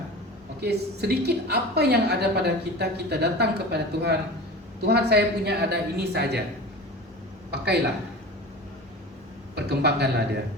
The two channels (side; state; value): both; normal; correlation 0.34